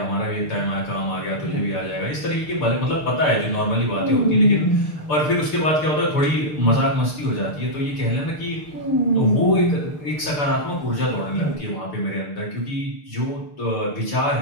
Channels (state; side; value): late; right; 6.8 ms